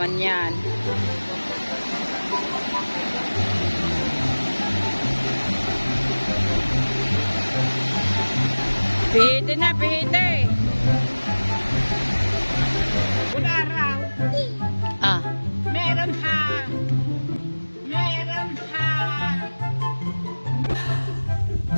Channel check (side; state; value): both; inverted; correlation -1.00